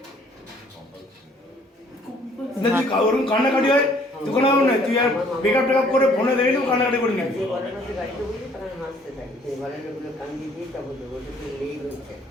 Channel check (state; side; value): normal; both; correlation 0.60